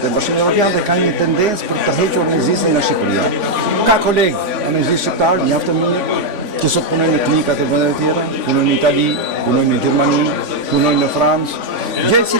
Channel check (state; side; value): late; left; 3.5 ms